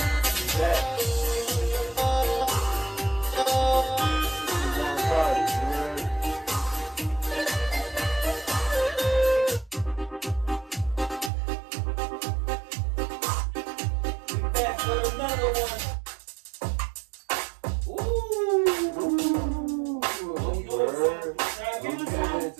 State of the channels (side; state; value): left; drops out; at 11.3 s